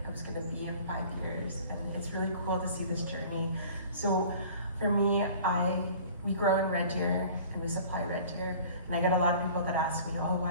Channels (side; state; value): both; inverted; correlation -0.47